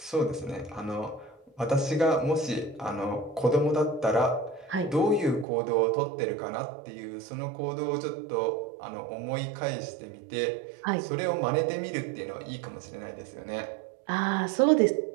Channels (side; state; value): left; drops out; at 5.5 s